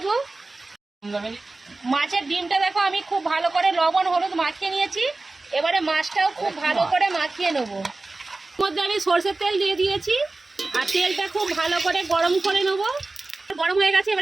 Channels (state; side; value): quieter; left; 3.3 dB